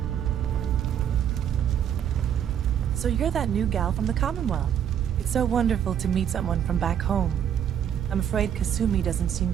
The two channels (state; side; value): quieter; left; 9.3 dB